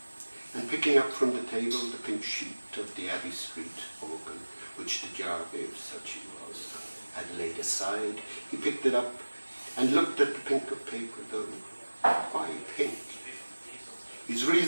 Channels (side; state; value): both; inverted; correlation -1.00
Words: and picking up from the table the pink sheet of the Abbey Street organ, which the Jarvey, if such he was, had laid aside, he picked it up and looked at the pink of paper, though why pink? His